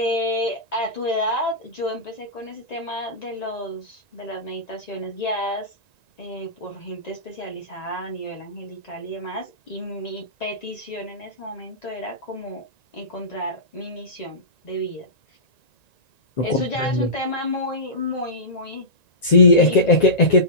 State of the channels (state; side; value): late; right; 1.9 ms